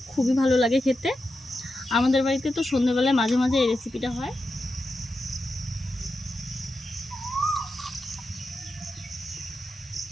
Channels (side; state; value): both; normal; correlation 0.89